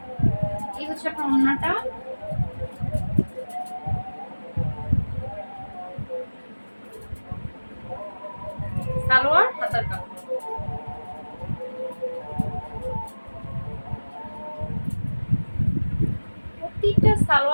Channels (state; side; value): inverted; both; correlation -1.00